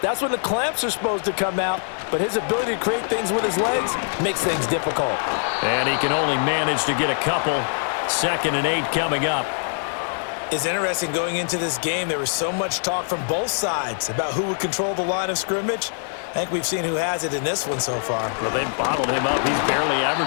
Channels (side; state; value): right; silent; digital silence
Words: when the clamps are supposed to come out, but his ability to create things with his legs makes things difficult. And he can only manage to get a couple. 2nd and 8 coming up. It's interesting going into this game. There was so much talk from both sides about who would control the line of scrimmage. I think we've seen who has it in this one so far. Well, they've bottled him up. He's barely